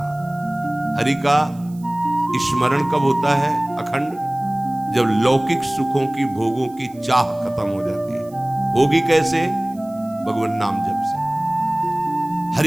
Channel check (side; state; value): right; noise; hiss, 27 dB below the sound